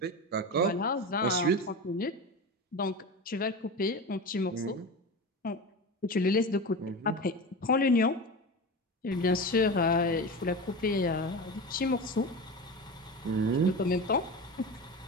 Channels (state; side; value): normal; both; correlation 0.26